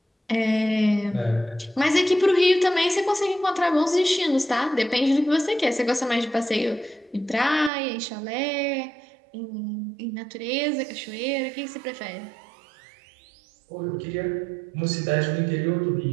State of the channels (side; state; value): left; drops out; at 7.7 s